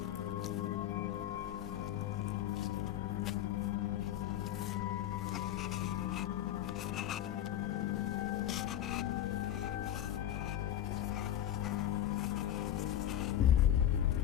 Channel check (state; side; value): quieter; right; 11.7 dB